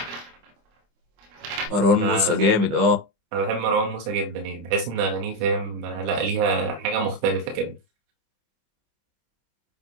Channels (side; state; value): left; late; 25 ms